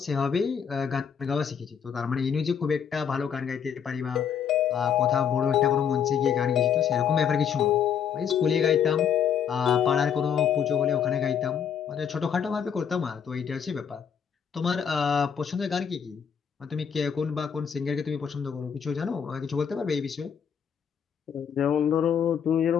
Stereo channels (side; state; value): right; quieter; 7.8 dB